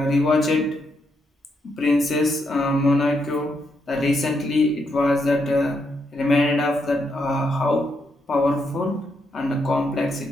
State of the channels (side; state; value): both; normal; correlation 0.79